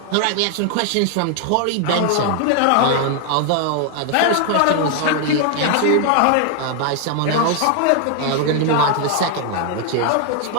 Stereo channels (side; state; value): both; different; correlation 0.00